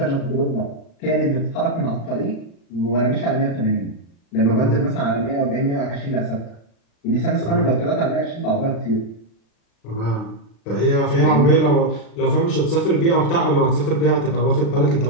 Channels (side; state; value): right; late; 35 ms